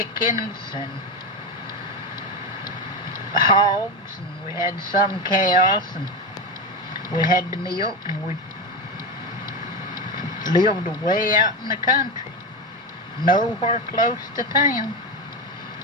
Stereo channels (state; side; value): normal; both; correlation 0.17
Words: and hogs, and we had some cows, and we had the milk, and we lived way out in the country, nowhere close to town.